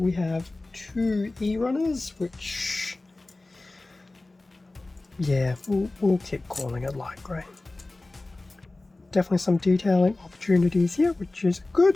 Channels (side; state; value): right; quieter; 3.0 dB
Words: have 2 E runners, which, yeah, we'll keep calling it light grey. Definitely some detailing opportunities here, which is